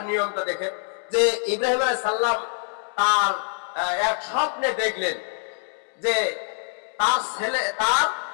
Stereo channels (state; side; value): silent; right; 62 dB below the other